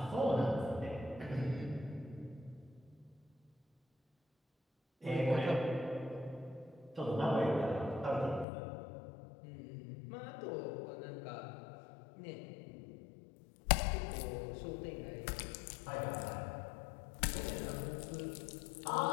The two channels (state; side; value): drops out; right; at 8.5 s